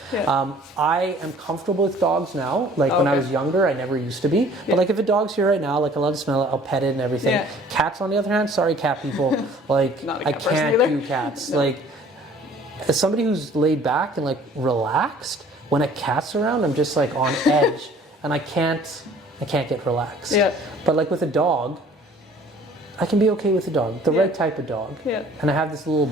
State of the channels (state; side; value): normal; both; correlation 0.53